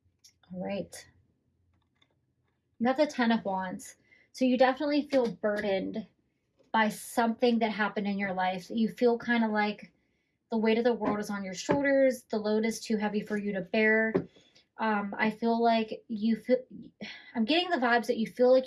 right. You have the 10 of Wands. So you definitely feel burdened by something that happened in your life. You feel kind of like the weight of the world is on your shoulders. The load is too heavy for you to bear. I feel like I'm getting the vibes that you feel like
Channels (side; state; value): both; identical; correlation 1.00